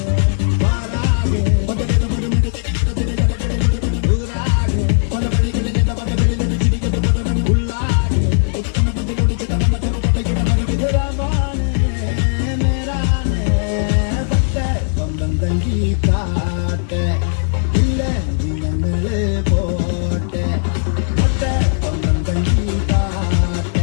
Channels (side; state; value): right; silent; digital silence